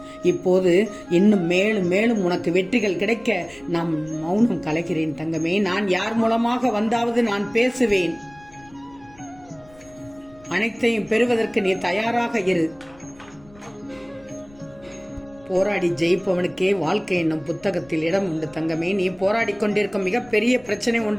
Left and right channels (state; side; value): noise; left; rumble, 26 dB below the sound